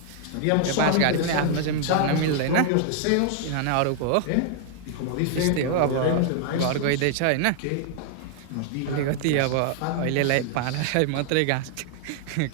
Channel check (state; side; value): different; both; correlation -0.01